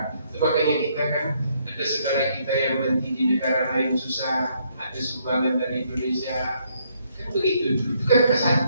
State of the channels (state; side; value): inverted; both; correlation -0.71